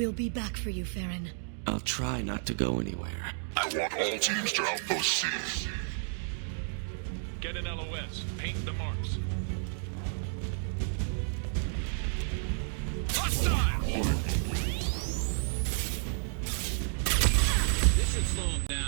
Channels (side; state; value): left; silent; digital silence